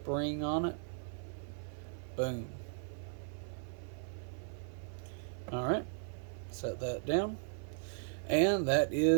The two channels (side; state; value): left; silent; 53 dB below the other